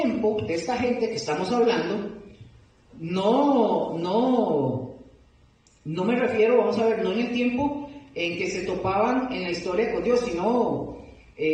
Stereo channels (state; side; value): identical; both; correlation 1.00